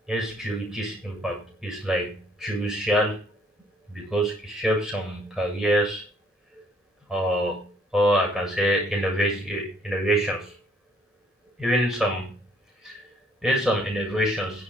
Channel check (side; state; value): both; normal; correlation 0.63